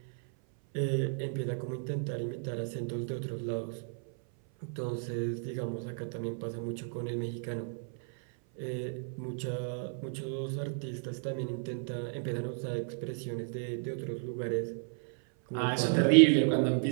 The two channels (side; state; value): left; silent; 56 dB below the other